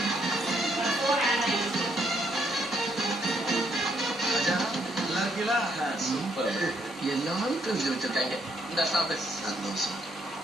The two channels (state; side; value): normal; both; correlation 0.72